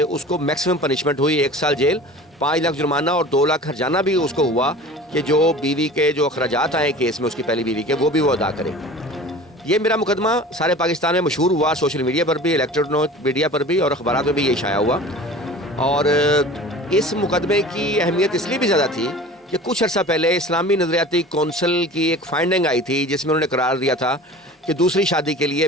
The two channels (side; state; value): both; normal; correlation 0.40